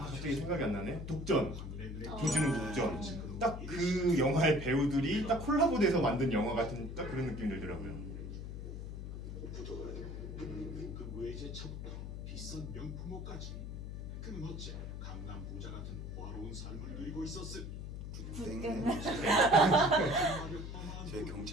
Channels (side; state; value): left; noise; hum, 7 dB below the sound